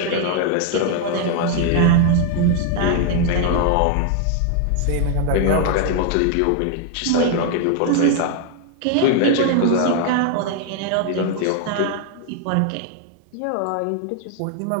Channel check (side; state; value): both; different; correlation 0.00